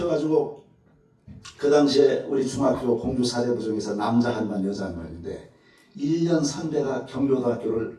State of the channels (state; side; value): identical; both; correlation 1.00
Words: 그 당시에 우리 중학교 공주 사대부 중에서 남자 한 반 여자 한 반인데 1년 선배가 경기고등학교를